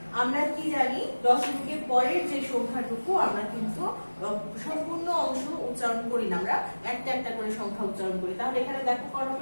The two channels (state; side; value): inverted; both; correlation -1.00